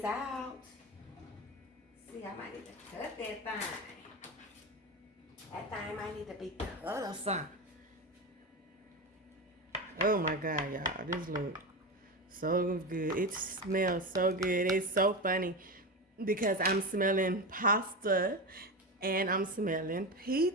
out. See, I might need to cut that thing. That thing might need to be cut or something. Oh my God, y'all, this look so good. It smells so good. It's so funny because I'm smelling pasta and I'm smelling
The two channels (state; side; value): normal; both; correlation 0.20